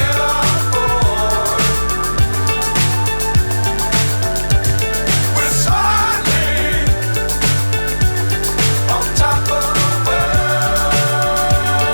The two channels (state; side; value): inverted; both; correlation -1.00